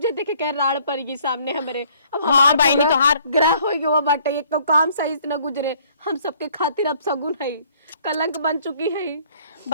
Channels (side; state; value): both; inverted; correlation -0.60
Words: के राड़ पड़गी सामने हमरे। अब हाँ बहनी तोहार ग्रह हो गया बाटे, एक तो काम सही से न गुजरे, हम सबके खातिर अब सगुन है, कलंक बन चुकी है।